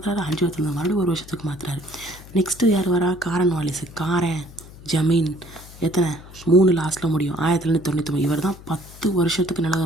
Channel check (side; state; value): left; noise; hum, 19 dB below the sound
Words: 5 வருஷத்துல மறுபடியும் 1 வருஷத்துக்கு மாற்றுறாரு. நெக்ஸ்ட்டு யார் வரா, காரன் வாலிஸ். ஜமீன் எத்தனை 3 லாஸ்ட்டில் முடியும், 1999. இவர் தான் 10 வருஷத்துக்கு நில